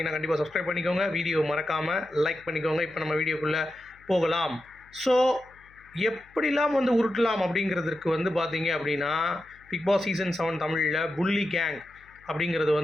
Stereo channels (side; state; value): left; noise; hum, 28 dB below the sound